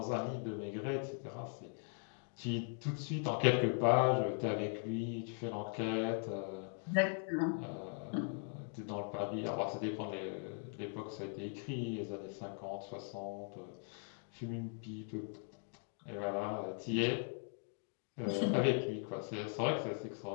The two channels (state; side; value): silent; right; 51 dB below the other